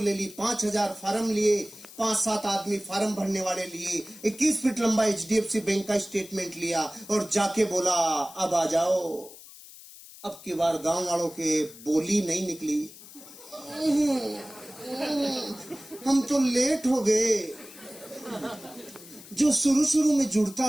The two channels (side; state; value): left; noise; hiss, 18 dB below the sound